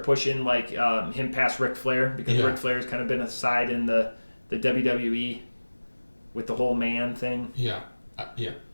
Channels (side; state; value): both; inverted; correlation -1.00